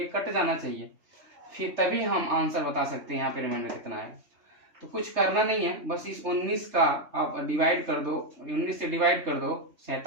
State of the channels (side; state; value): left; late; 3.3 ms